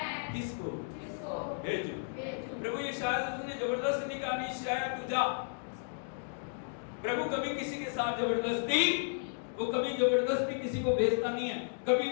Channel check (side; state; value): right; silent; digital silence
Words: किसको भेजूं? प्रभु ये शायद उसने जबरदस्ती नहीं कहा, नहीं शायद तू जा। प्रभु कभी किसी के साथ जबरदस्ती, वो कभी जबरदस्ती किसी को भेजता नहीं है। कभी